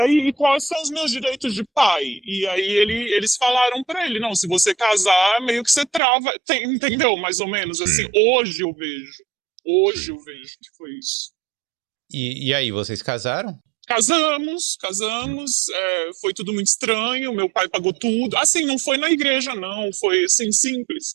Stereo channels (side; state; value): left; drops out; at 6.0 s